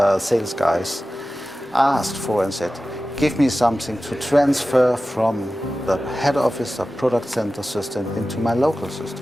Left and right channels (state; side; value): normal; both; correlation 0.95